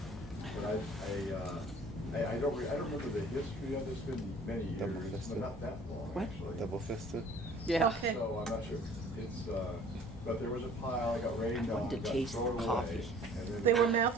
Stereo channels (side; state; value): both; normal; correlation 0.52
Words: but I don't remember the history of this. It's been many years, Double-fisted. but not that long actually. Double-fisted. Yeah. Okay. So I'm not sure. It's but there was a pile. I got rained on. wanted to got taste thrown the away, coffee. and then They were